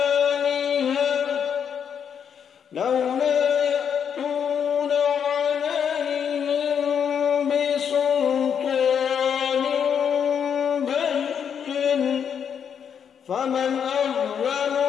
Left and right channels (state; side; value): quieter; right; 7.7 dB